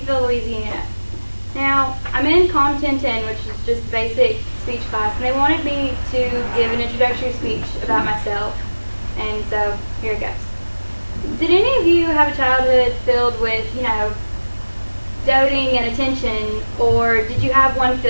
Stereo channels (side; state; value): both; inverted; correlation -1.00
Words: Louisiana. Now, I'm in Comm 1010, which is just basic speech class, and they wanted me to give an introductory speech about myself, and so here it goes. Did any of you have a childhood filled with, doting and attention, or did you have one